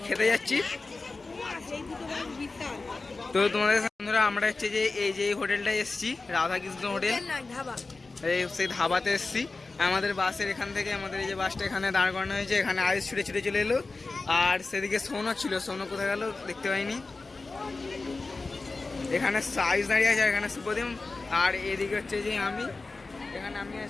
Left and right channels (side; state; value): right; quieter; 3.6 dB